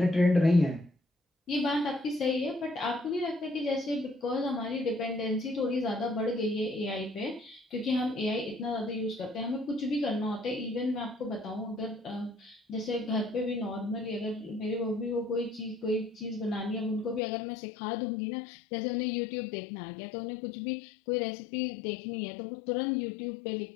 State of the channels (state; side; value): drops out; right; at 17.2 s